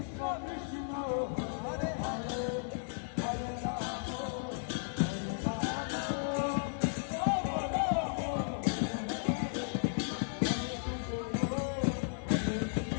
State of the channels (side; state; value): right; silent; 55 dB below the other